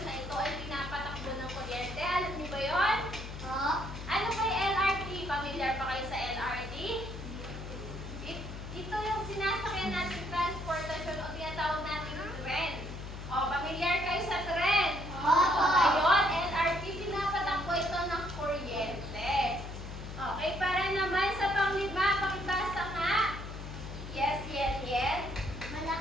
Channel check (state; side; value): noise; left; hum, 9 dB below the sound